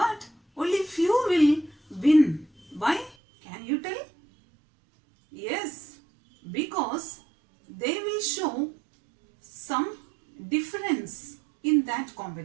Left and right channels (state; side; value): drops out; left; at 3.2 s